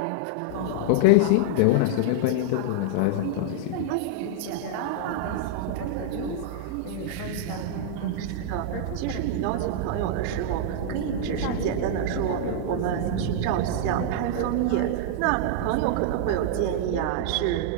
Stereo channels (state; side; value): different; both; correlation -0.01